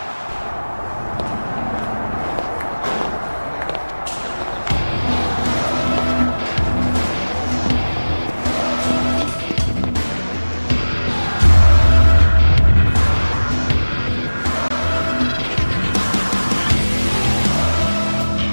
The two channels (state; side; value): inverted; both; correlation -1.00